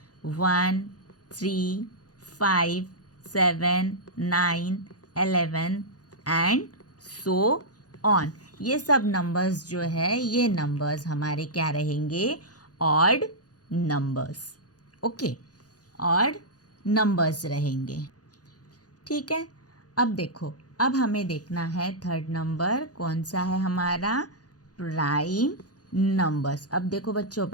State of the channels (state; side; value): late; right; 0.68 ms